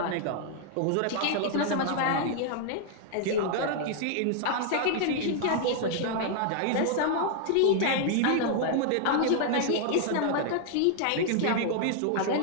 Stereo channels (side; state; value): both; different; correlation -0.01